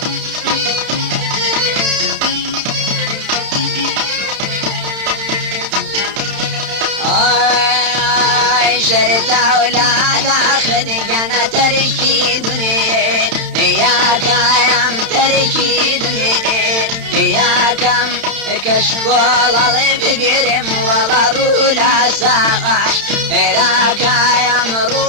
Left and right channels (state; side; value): late; left; 31 ms